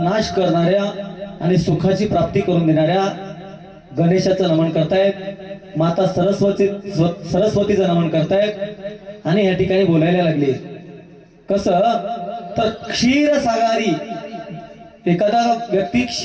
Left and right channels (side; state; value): both; identical; correlation 1.00